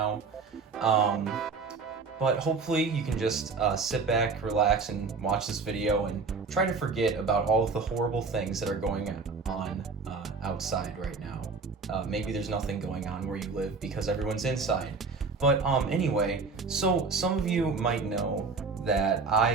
Um, but hopefully you can just sit back, relax, and watch this video and try to forget about all of the horrible things that are going on outside right now. Maybe there's nothing going on where you live because everyone's inside. But anyway, so some of you might know that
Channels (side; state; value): left; quieter; 4.5 dB